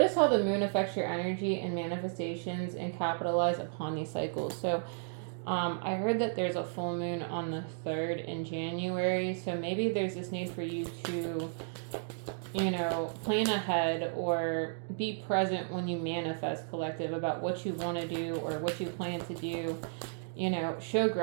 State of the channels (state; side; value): silent; left; digital silence